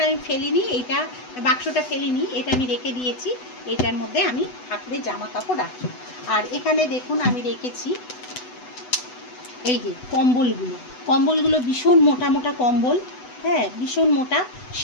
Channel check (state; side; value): late; right; 8.0 ms